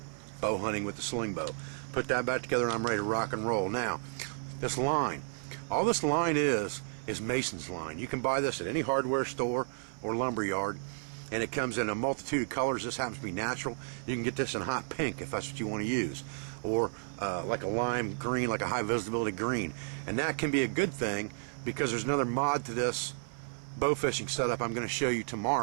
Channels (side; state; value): left; silent; 56 dB below the other